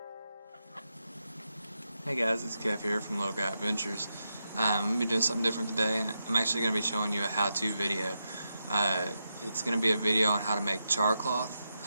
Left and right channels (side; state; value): both; inverted; correlation -0.86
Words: guys, it's Kev here from Little Guy Adventures. I'm going to be doing something different today. I'm actually going to be showing you a how-to video. It's going to be a video on how to make char cloth.